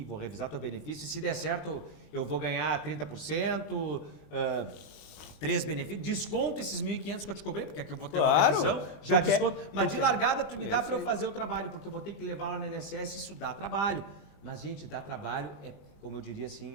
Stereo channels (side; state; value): right; late; 20 ms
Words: vou revisar teu benefício, e se der certo eu vou ganhar 30%, 3 benefícios, desconto esses 1.500 que eu te cobrei, porque aqui eu vou ter uma revisão, já desconto, mas de largada tu me dá para eu fazer o trabalho, porque eu vou ter que levar lá na INSS, isso dá trabalho. Mas gente, dá trabalho, como eu diria